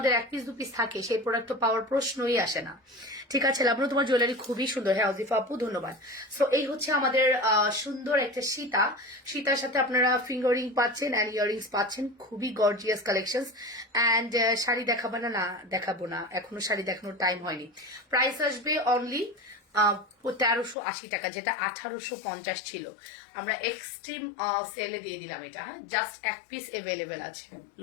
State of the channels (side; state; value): right; drops out; at 20.8 s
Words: 1 পিস 2 পিস থাকে, সেই প্রোডাক্ট তো পাওয়ার প্রশ্নই আসে না, ঠিক আছে? লাবণ্য, তোমার জুয়েলারি খুবই সুন্দর। হ্যাঁ অজিফা আপু, ধন্যবাদ। সো এই হচ্ছে আমাদের সুন্দর একটা সীতা। সীতার সাথে আপনারা ফিঙ্গারিং পাচ্ছেন অ্যান্ড ইয়ারিংস পাচ্ছেন, খুবই গর্জিয়াস কালেকশন। অ্যান্ড শাড়ি দেখাবো না? না দেখাবো না, এখনো শাড়ি দেখানোর টাইম হয়নি। প্রাইস আসবে অনলি 1380 টাকা, যেটা 1850 ছিল। আমরা এক্সট্রিম সেলে দিয়ে দিলাম এটা। হ্যাঁ, জাস্ট 1 পিস অ্যাভেলেবেল আছে।